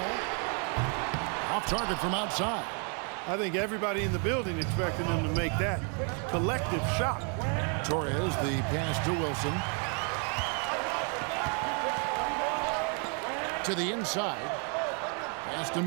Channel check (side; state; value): left; quieter; 38.9 dB